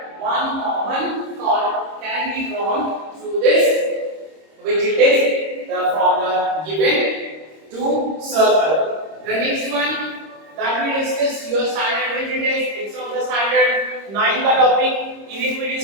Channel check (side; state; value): left; late; 26 ms